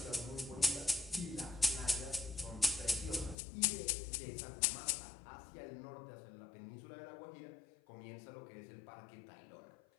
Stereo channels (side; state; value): right; drops out; at 3.4 s